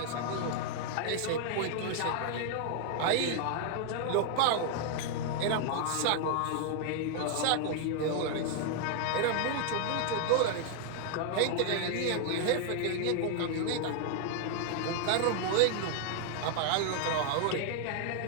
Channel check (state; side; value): different; both; correlation 0.00